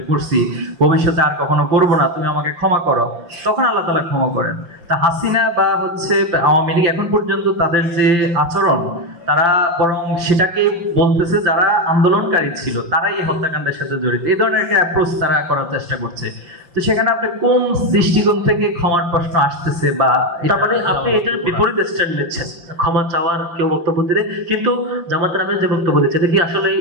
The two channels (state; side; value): late; left; 5.8 ms